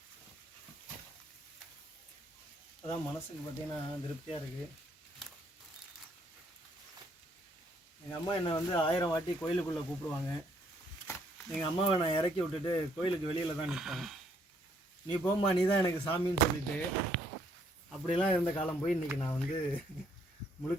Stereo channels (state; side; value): normal; both; correlation 0.68